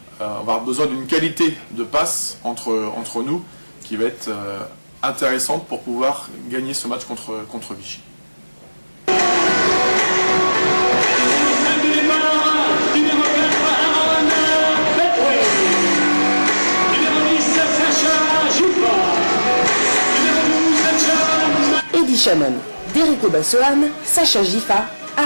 on va avoir besoin d'une qualité de passe entre nous qui va être intéressante pour pouvoir gagner ce match contre Vichy. Eddie Shannon, Derrick Obasohan, Sacha Gifa,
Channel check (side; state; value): both; inverted; correlation -1.00